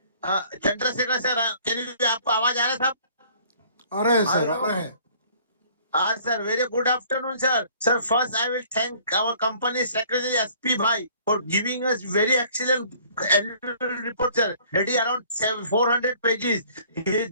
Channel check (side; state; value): both; inverted; correlation -0.55